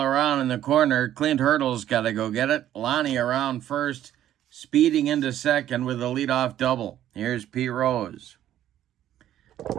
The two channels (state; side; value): quieter; left; 11.9 dB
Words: in the corner. Clint Hurdle's got to go get it. Lonnie around first, speeding into second with a leadoff double. Here's Pete Rose.